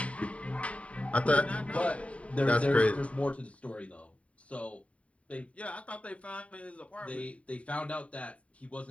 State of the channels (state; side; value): late; right; 0.065 ms